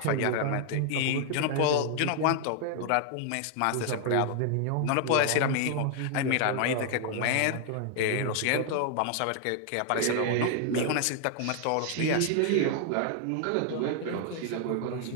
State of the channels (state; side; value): different; both; correlation 0.00